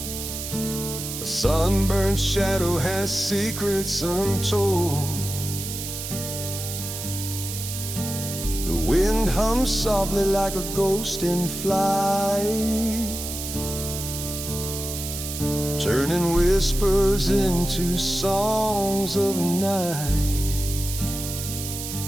a sunburned shadow has secrets untold. The wind hums softly like a ghost in flight, turning whispers into songs of night.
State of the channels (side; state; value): right; noise; hiss, 7 dB below the sound